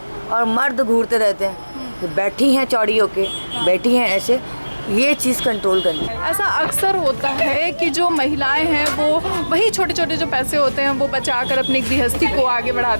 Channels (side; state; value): both; inverted; correlation -1.00